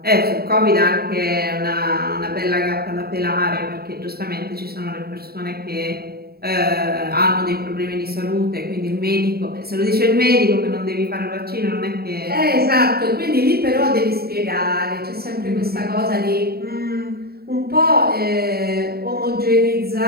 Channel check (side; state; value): left; late; 0.45 ms